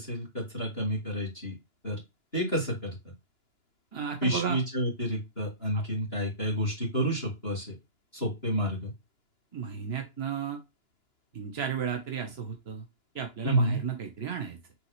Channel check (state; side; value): late; right; 2.9 ms